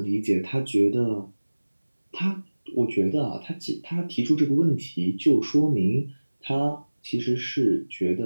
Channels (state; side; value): inverted; both; correlation -1.00